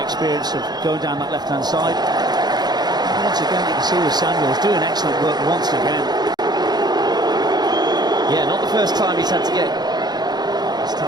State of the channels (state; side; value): late; left; 0.20 ms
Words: experience of going down that left-hand side. And once again, you can see with Samuels doing excellent work once again. Yeah, not the first time he's had to get. This